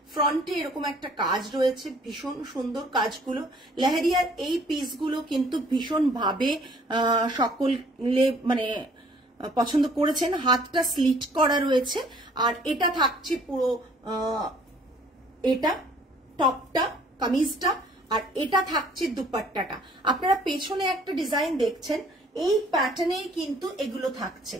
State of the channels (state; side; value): normal; both; correlation 0.57